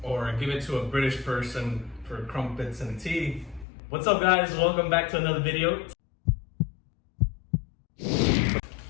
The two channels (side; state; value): right; drops out; at 3.7 s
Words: Or give it to a British person for crumpets and tea. What's up, guys? Welcome back to another video.